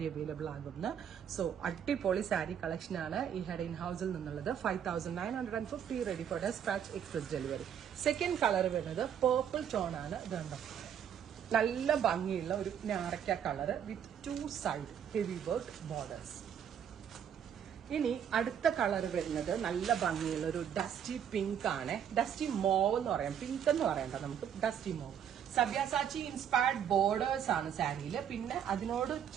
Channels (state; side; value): quieter; left; 8.8 dB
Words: അവൈലബിൾ ആകുന്ന? സോ അടിപൊളി സാരി കളക്ഷൻ ആണ് ഈ ഹെഡ് ഇൻ ഹൗസിൽ നിന്നുള്ളത്. 5950, ready for despatch, express delivery. Second colour വരുന്നത് പേർപ്പിൾ ടോൺ ആണ്. ഇതുണ്ടോ, നല്ല ഭംഗിയുള്ള ഒരു ഞാറക്ക colour with 2 side heavy work borders. ഇനി അടുത്ത കളർ വരുന്നത് നല്ല ഭംഗിയുള്ള ഒരു ഡസ്റ്റി പിങ്ക് ആണ്. ഡസ്റ്റി മോവ് എന്ന് പറയാം, പിങ്ക് എന്ന് പറയണ്ട, നമുക്ക് dusty mauve. Sabyasachi inspired borders ആണ് സാരിയിൽ. പിന്നെ അതിനോട്